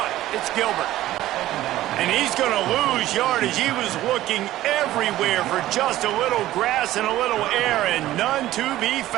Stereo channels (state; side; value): quieter; left; 14.8 dB